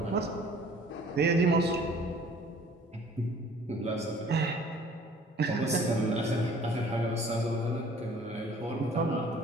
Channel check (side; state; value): both; normal; correlation 0.52